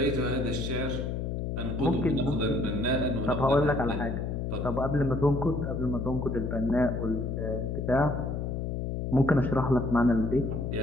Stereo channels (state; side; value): noise; left; hum, 2 dB below the sound